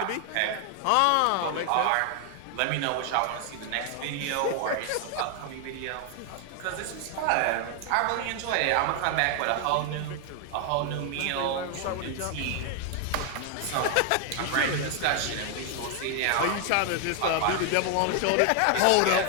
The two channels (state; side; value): different; both; correlation 0.00